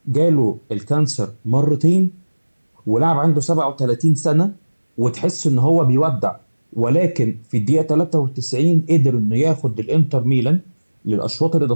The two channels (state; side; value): inverted; both; correlation -1.00